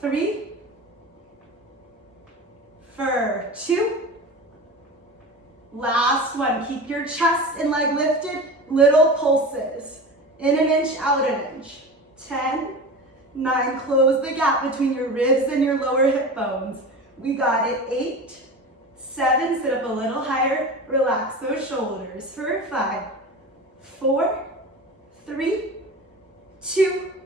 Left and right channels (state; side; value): normal; both; correlation 0.31